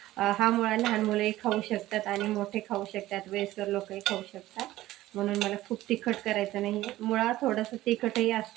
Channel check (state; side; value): quieter; left; 15.8 dB